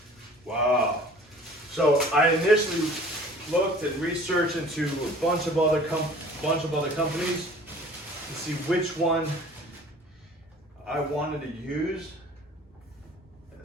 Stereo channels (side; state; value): both; normal; correlation 0.48